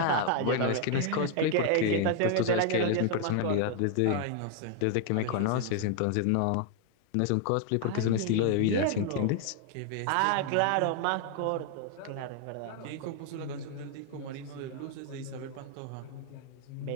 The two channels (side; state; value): both; different; correlation 0.00